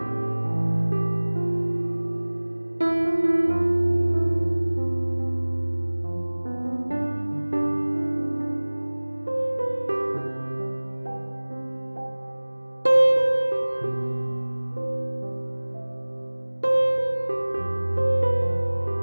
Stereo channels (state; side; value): inverted; both; correlation -1.00